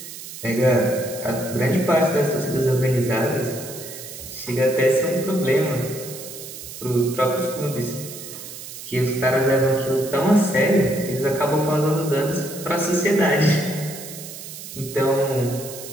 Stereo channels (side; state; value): right; noise; hiss, 12 dB below the sound